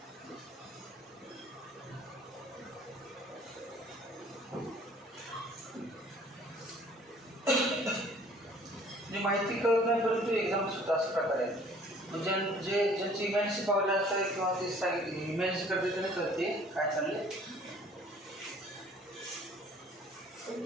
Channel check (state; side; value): normal; both; correlation 0.54